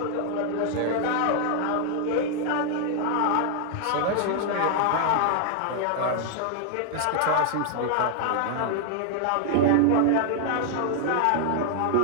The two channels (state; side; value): different; both; correlation 0.00